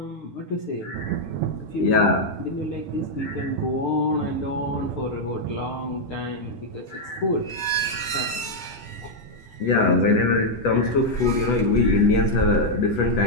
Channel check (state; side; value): normal; both; correlation -0.02